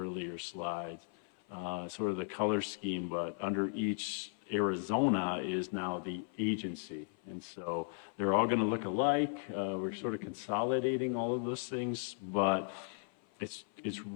slides, sort of the color scheme, but under each Arizona is now the agency. And so they're all going to look alike. We're sort of consolidating all of those things, but it's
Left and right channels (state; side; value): silent; right; 54 dB below the other